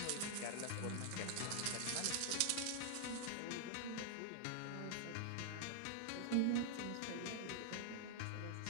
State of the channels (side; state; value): both; different; correlation -0.01